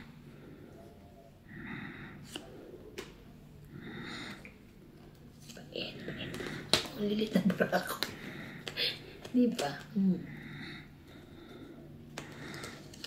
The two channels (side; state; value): both; identical; correlation 1.00